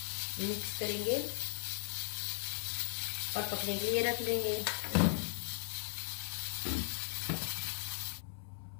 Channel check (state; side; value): silent; right; 53 dB below the other